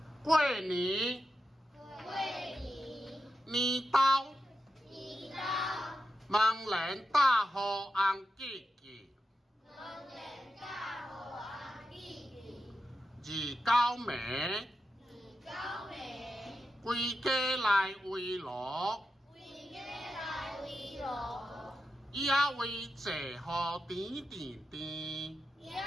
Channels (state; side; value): normal; both; correlation 0.89